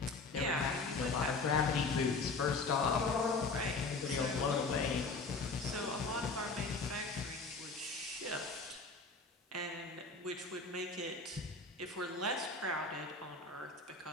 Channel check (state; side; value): quieter; right; 3.8 dB